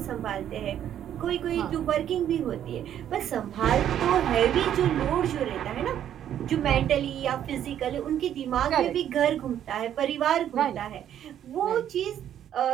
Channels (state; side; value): quieter; left; 10.4 dB